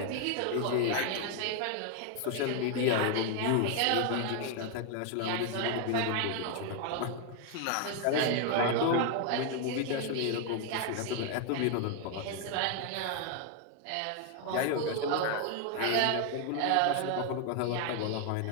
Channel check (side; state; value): both; different; correlation 0.00